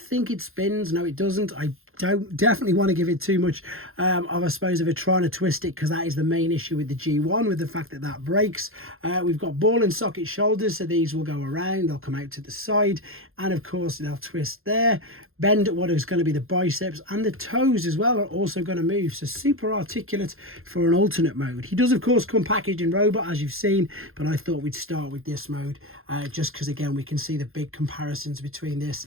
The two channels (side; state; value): left; late; 0.61 ms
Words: it spins. No, it doesn't. I don't definitely want to give it too much I suppose of a trying to twist it, because that is the main issue with the G1, with the fact that that breaks. We've got ball and socket shoulders, so these will go around, they'll come out to the side, and of course they'll twist there, bend at what is going to be the biceps, and the toes as well are also going to move, so super articulate for an alternate mode. He does of course come packaged in robot, as you've seen, but I thought we'd start with this mode just because again we can see the big comparisons between this